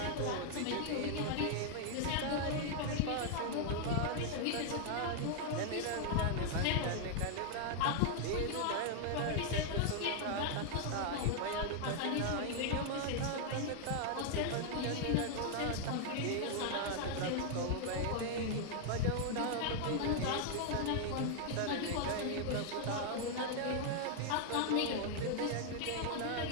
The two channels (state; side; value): different; both; correlation 0.00